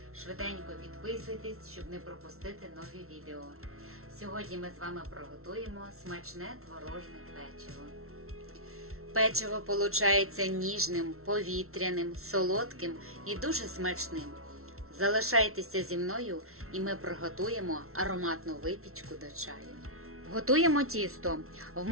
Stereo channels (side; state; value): left; late; 0.63 ms